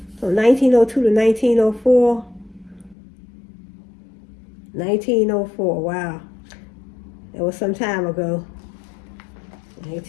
So 1902 to 1904. 1904, wow. It was some time ago.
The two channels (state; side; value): drops out; right; at 3.0 s